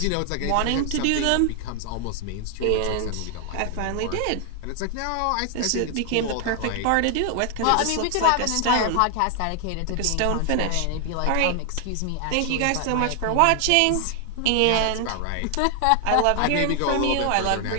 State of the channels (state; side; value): different; both; correlation 0.00